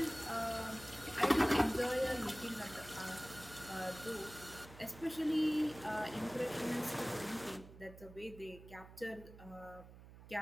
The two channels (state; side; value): noise; right; hum, 17 dB below the sound